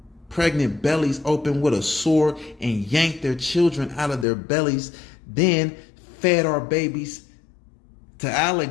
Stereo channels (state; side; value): drops out; right; at 4.2 s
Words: pregnant bellies open with a sword and yanked their children out of their bellies, then fed our babies to